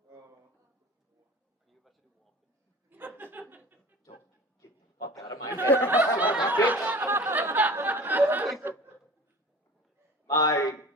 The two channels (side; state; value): both; normal; correlation 0.41